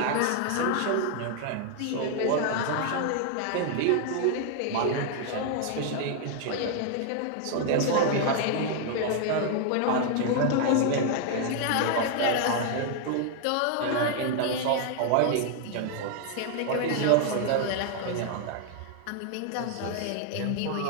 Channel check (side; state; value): both; different; correlation 0.00